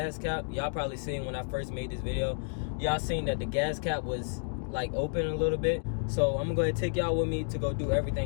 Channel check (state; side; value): silent; right; digital silence